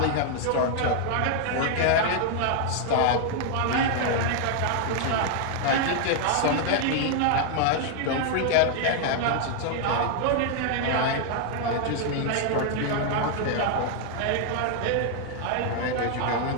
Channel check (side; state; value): both; different; correlation 0.00